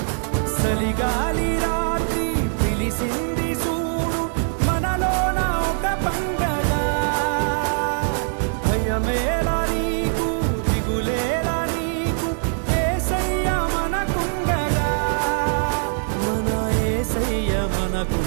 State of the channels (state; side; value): silent; left; 59 dB below the other